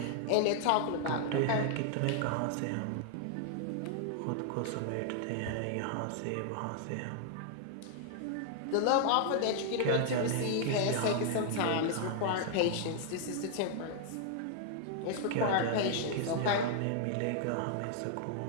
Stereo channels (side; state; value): both; different; correlation 0.00